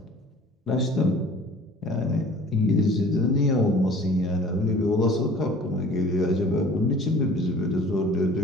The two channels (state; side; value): normal; both; correlation 0.47